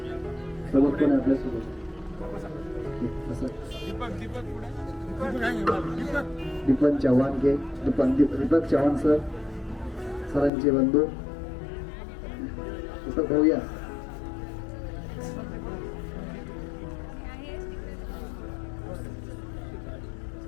सोबत कोण आपल्या सोबत दीपक चव्हाण के दीपक चव्हाण सर सरांचे बंधू दीपक भाऊया.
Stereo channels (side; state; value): right; drops out; at 10.5 s